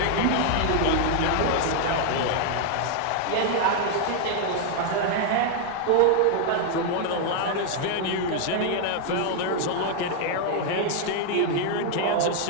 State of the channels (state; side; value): different; both; correlation 0.00